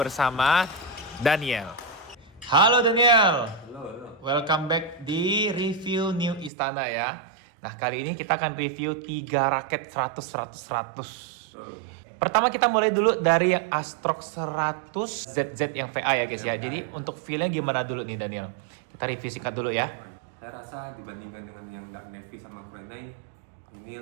Daniel. Halo Daniel. Halo. Welcome back di review New Istana ya. Nah, kali ini kita akan review 3 raket 100. Pertama kita mulai dulu dari yang Astrox 100 ZZ yang VA ya guys ya. Jadi untuk feel-nya gimana dulu nih Daniel? Kita review singkat dulu ya. Saya rasa dibandingkan dengan yang Dark Navy sama Kurenai, ini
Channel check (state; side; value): drops out; left; at 6.5 s